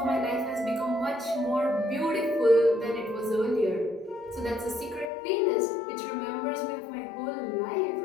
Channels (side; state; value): right; drops out; at 5.1 s